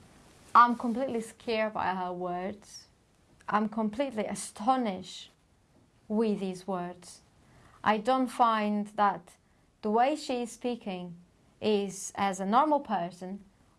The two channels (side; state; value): both; identical; correlation 1.00